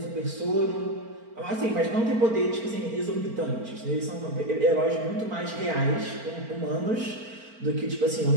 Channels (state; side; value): late; left; 4.4 ms